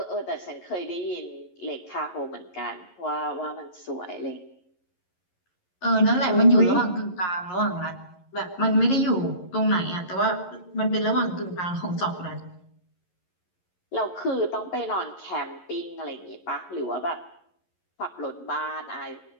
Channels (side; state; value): right; late; 11 ms